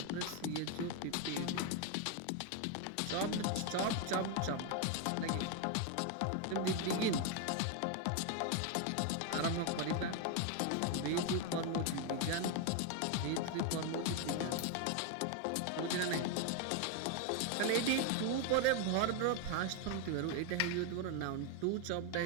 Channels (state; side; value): different; both; correlation 0.01